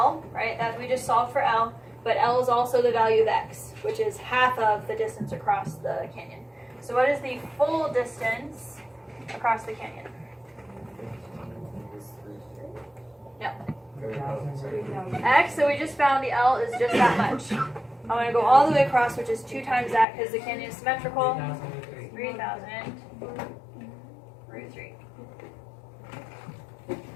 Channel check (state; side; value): drops out; right; at 20.1 s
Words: right? That we just solved for L, but L is also the value of X, which is half of the distance across the canyon. So what is the full distance across the canyon? No. X, so we just found the L is just that much. I'm going to go all the way across, which is 2 times that because the canyon is symmetrical. 3,000 root 3.